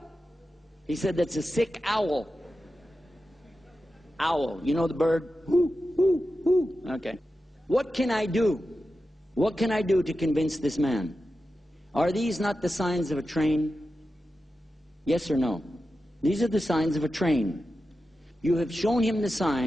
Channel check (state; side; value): normal; both; correlation 0.92